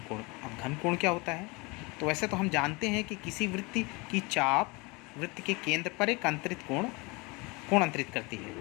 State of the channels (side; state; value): right; quieter; 26.6 dB